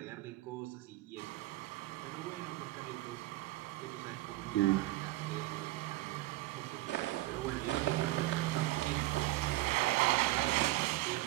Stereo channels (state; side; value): quieter; left; 17.9 dB